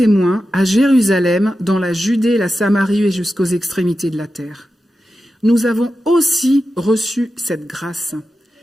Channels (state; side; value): normal; both; correlation 0.91